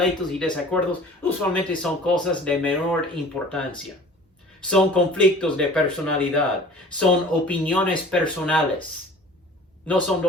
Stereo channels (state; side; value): normal; both; correlation 0.45